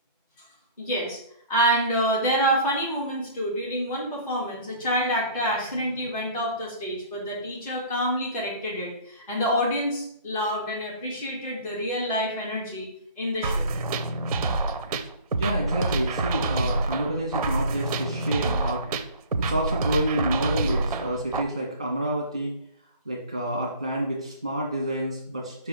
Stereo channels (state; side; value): inverted; both; correlation -0.47